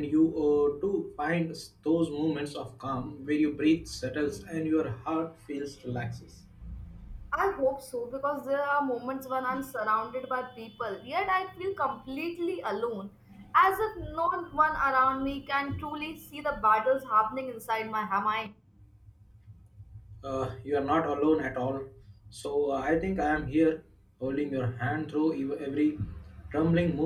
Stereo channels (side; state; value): both; identical; correlation 1.00